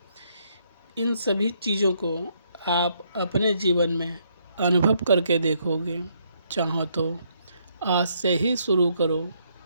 इन सभी चीज़ों को आप अपने जीवन में अनुभव करके देखोगे। चाहो तो आज से ही शुरू करो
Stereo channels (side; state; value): both; inverted; correlation -0.72